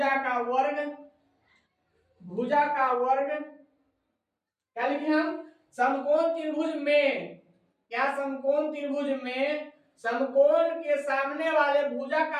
का वर्ग क्या लिखे हम, समकोण त्रिभुज में, क्या समकोण त्रिभुज में समकोण के सामने वाले भुजा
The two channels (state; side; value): identical; both; correlation 1.00